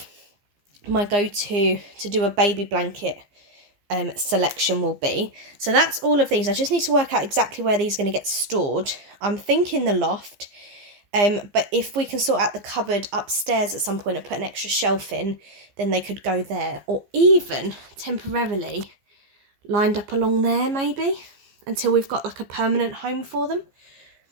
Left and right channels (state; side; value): late; left; 15 ms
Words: my go-to to do a baby blanket selection will be. So that's all of these. I just need to work out exactly where these are going to get stored. I'm thinking the loft, but if we can sort out the cupboard upstairs at some point and put an extra shelf in, then they could go there, or even temporarily lined up along there maybe, until we've got like a permanent home for them.